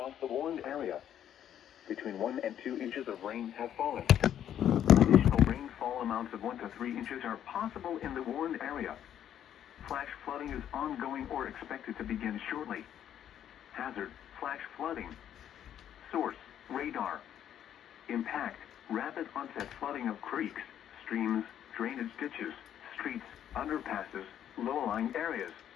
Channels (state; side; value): quieter; right; 10.2 dB